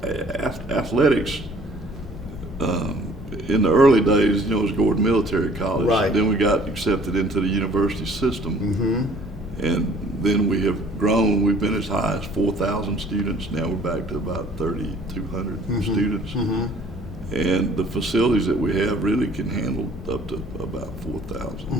Athletics, in the early days, you know, it was Gordon Military College. Right. Then we got accepted into the university system. And then we have grown. We've been as high as 4,000 students. Now we're back to about 3,200 students. And the facilities that we have really can handle up to about 4,000.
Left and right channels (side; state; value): both; normal; correlation 0.55